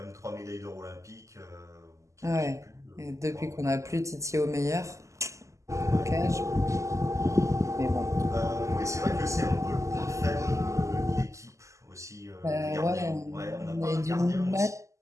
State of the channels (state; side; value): late; left; 0.15 ms